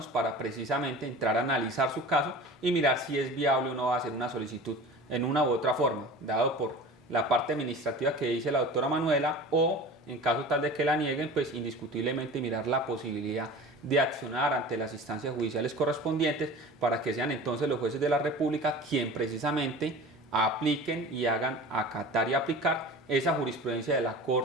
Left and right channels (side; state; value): both; normal; correlation 0.37